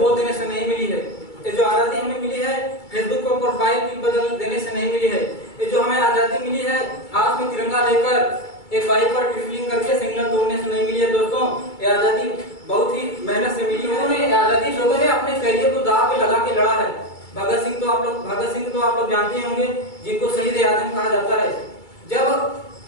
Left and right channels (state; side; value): late; right; 2.3 ms